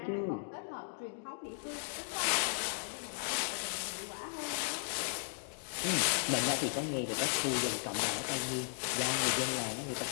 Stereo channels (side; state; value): right; silent; digital silence